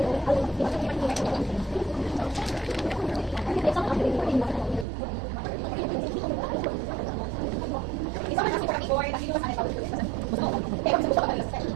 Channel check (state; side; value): drops out; left; at 4.9 s